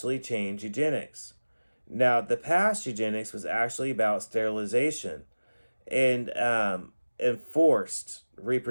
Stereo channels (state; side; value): inverted; both; correlation -1.00